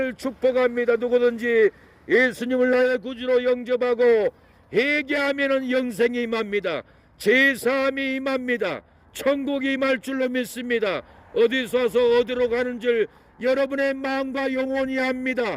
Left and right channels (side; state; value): both; identical; correlation 1.00